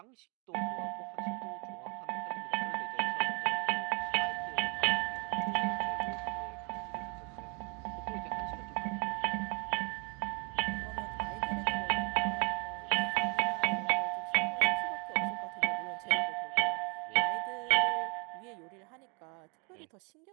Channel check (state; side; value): quieter; left; 33.6 dB